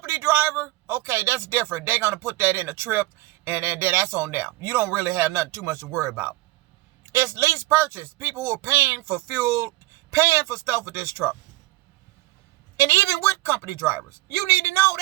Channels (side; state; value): left; quieter; 19.1 dB